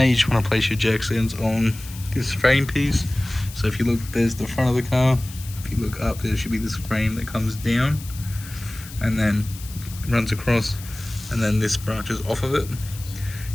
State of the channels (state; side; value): noise; left; hiss, 16 dB below the sound